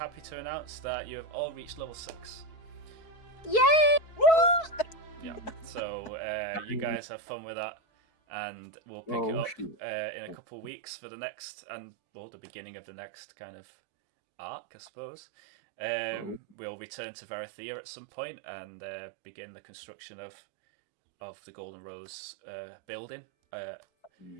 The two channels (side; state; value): right; late; 4.6 ms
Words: to announce that you have all reached level 6. Yay! Yeah. So you guys have fun with that, and we'll pick it up in a couple of weeks for the next, the beginning of the next kind of arc, I suppose. We'll return to Varathea at some point and begin the construction of the Golden Rose building.